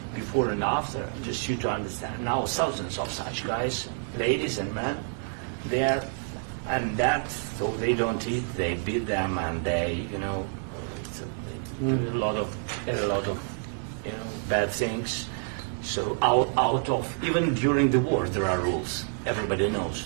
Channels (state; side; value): silent; left; 59 dB below the other